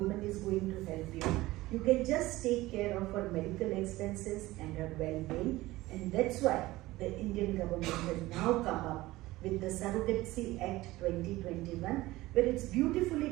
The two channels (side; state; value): left; quieter; 18.3 dB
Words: is going to help you, you can just take care of her medical expenses and her well-being. And that's why the Indian government has now come up with the Surrogacy Act 2021, where it's beautifully